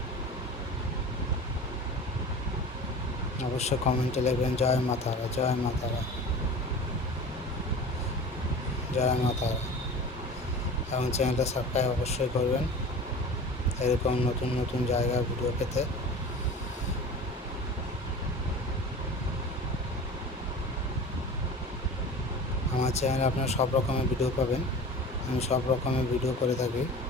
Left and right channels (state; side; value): normal; both; correlation 0.37